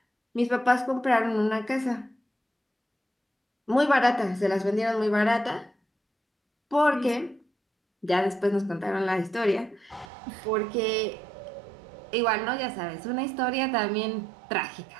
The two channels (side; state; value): left; drops out; at 10.1 s